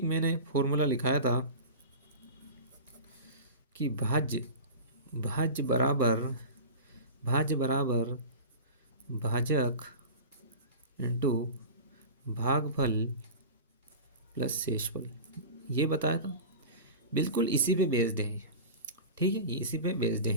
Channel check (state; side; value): inverted; both; correlation -0.32